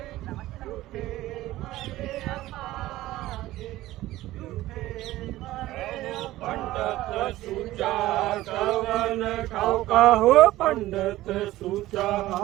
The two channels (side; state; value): left; quieter; 16.2 dB